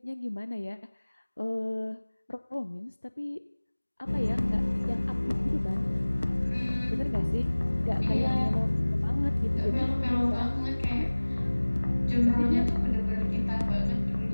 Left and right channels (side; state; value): both; inverted; correlation -1.00